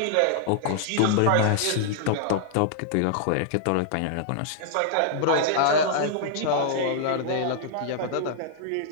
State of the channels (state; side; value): different; both; correlation -0.01